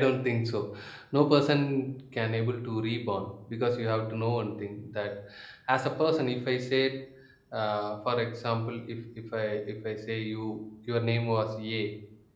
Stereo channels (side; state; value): both; identical; correlation 1.00